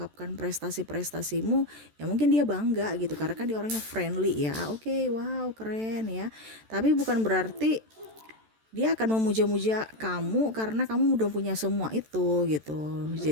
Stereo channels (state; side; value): late; left; 14 ms